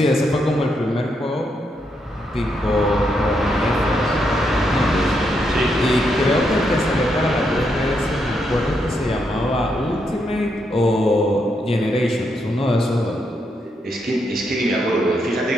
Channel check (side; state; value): both; normal; correlation 0.80